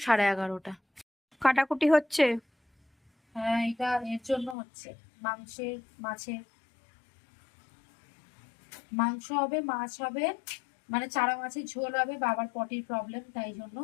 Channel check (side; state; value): right; drops out; at 4.5 s